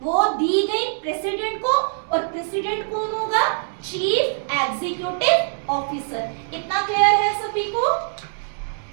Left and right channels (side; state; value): left; silent; 64 dB below the other